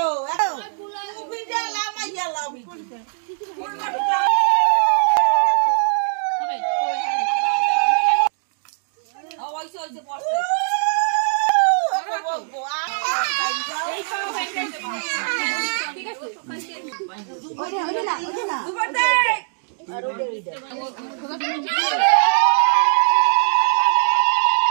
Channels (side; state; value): left; silent; digital silence